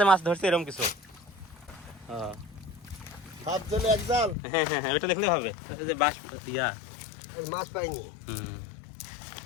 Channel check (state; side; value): drops out; right; at 4.4 s